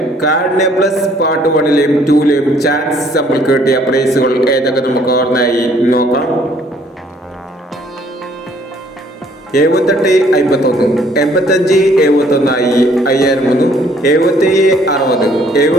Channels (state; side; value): normal; both; correlation 0.62